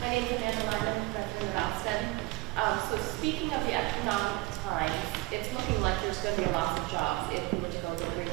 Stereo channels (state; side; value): quieter; left; 21.6 dB